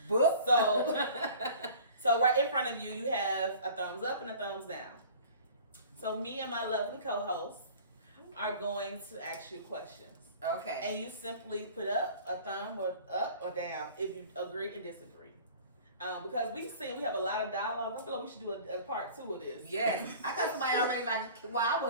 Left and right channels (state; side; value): inverted; both; correlation -0.45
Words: Book. So right in front of you, you have a thumbs up and a thumbs down. So me and my lovely co-host are going to ask you questions. Okay. And you simply put up a thumb or up or down if you agree and disagree. Because we have a lot of dialogue. I feel like we should do a part 2 of this. Yes. I got somebody already like, well, I